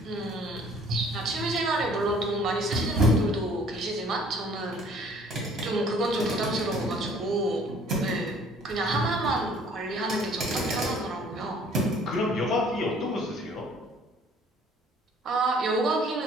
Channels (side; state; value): both; normal; correlation 0.56